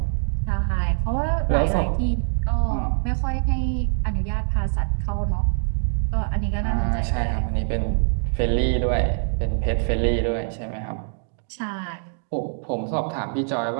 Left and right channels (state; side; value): silent; left; digital silence